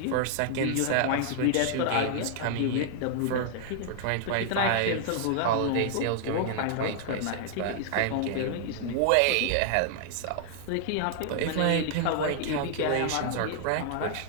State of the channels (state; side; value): different; both; correlation -0.01